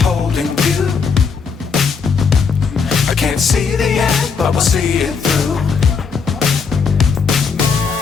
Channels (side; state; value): right; quieter; 5.6 dB